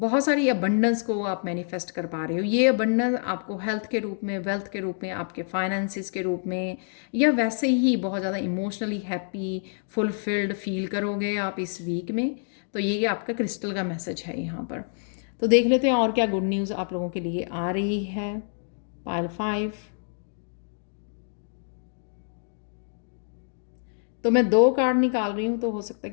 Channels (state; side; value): silent; right; digital silence